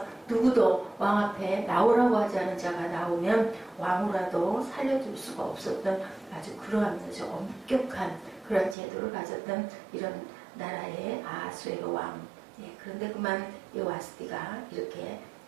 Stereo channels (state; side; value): drops out; left; at 8.8 s